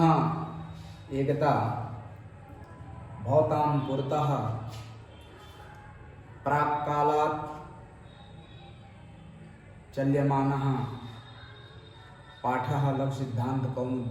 एकदा भवतां पुरतः प्राक्कालात् चल्यमानः पाठः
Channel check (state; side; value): identical; both; correlation 1.00